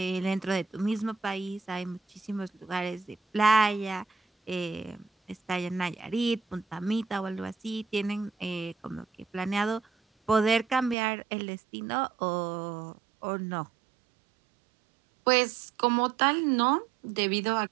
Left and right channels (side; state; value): left; drops out; at 11.0 s